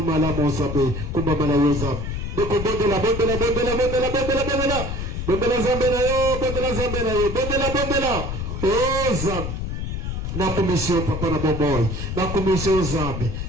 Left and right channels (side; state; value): left; noise; rumble, 4 dB below the sound